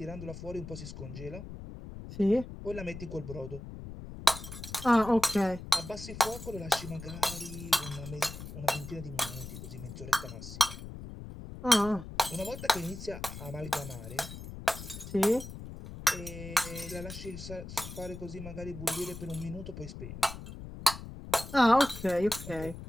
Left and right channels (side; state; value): left; noise; rumble, 11 dB below the sound